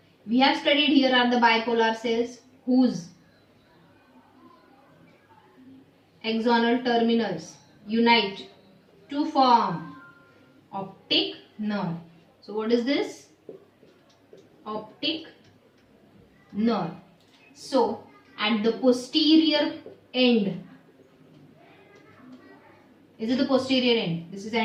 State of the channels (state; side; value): identical; both; correlation 1.00